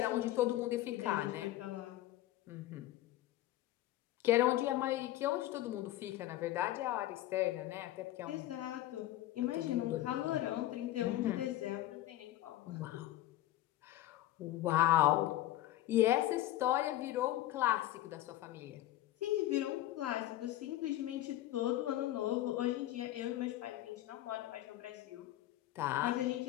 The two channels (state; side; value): quieter; right; 14.7 dB